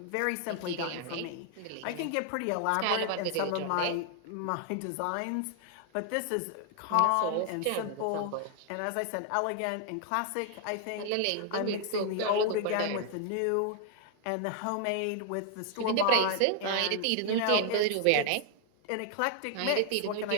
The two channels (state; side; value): different; both; correlation 0.00